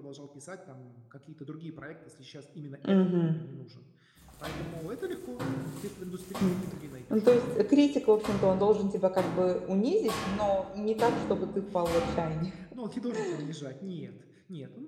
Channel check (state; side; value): identical; both; correlation 1.00